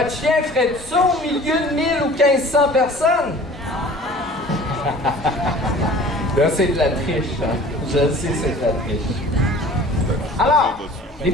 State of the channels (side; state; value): both; normal; correlation 0.46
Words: chien ferait ça au milieu de 1000 ou 1500 personnes? Là, c'est de la triche, hein? Je le sais, c'est de la triche. Alors, les